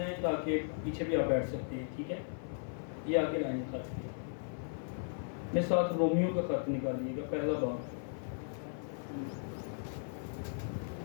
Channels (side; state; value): right; silent; 53 dB below the other